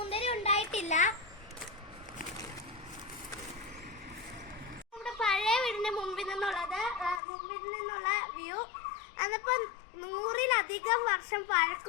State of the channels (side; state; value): right; drops out; at 7.2 s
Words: ഉണ്ടായിട്ടില്ല. നമ്മുടെ പഴയ വീടിന്റെ മുമ്പിൽ നിന്നുള്ള വ്യൂ. അതിപ്പോ 100-ലധികം വർഷം